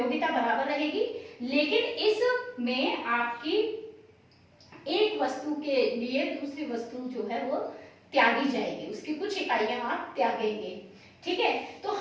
बराबर रहेगी, लेकिन इसमें आपकी एक वस्तु के लिए दूसरी वस्तु जो है वो त्यागी जाएगी, उसकी कुछ इकाइयां आप त्यागेंगे, ठीक है। तो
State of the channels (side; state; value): both; identical; correlation 1.00